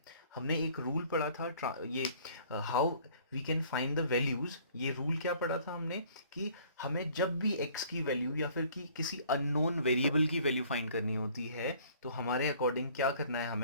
हमने एक रूल पढ़ा था ये how we can find the values. ये रूल क्या पढ़ा था हमने कि हमें जब भी x की वैल्यू या फिर कि किसी अननोन वेरिएबल की वैल्यू फाइंड करनी होती है तो हमारे अकॉर्डिंग क्या करना है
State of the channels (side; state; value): both; inverted; correlation -0.55